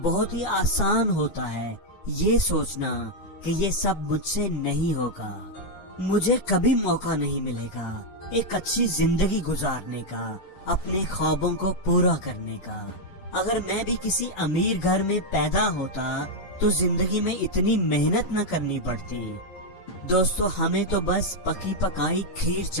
بہت ہی آسان ہوتا ہے یہ سوچنا کہ یہ سب مجھ سے نہیں ہوگا، مجھے کبھی موقع نہیں ملے گا ایک اچھی زندگی گزارنے کا، اپنے خوابوں کو پورا کرنے کا۔ اگر میں بھی کسی امیر گھر میں پیدا ہوتا تو زندگی میں اتنی محنت نہ کرنی پڑتی۔ دوستو ہمیں تو بس پکی پکائی کھیر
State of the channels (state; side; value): late; right; 11 ms